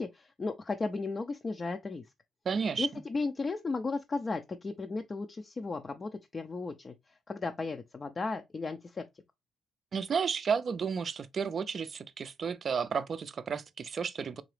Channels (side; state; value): both; normal; correlation 0.84